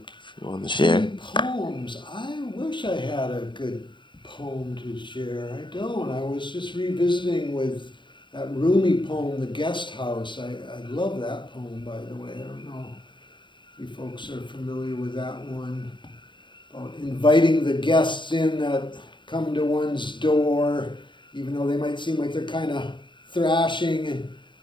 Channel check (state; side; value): late; right; 0.23 ms